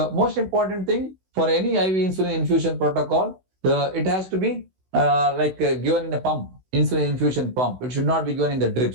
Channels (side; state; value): left; late; 16 ms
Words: most important thing for any IV insulin infusion protocol, it has to be given in a pump, insulin infusion pump. It should not be given in the